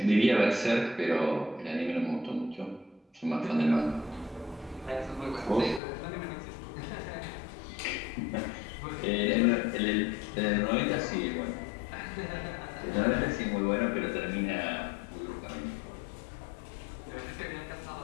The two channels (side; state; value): right; drops out; at 5.8 s